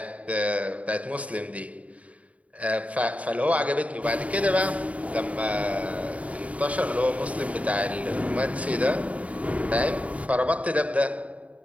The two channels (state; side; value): late; left; 0.067 ms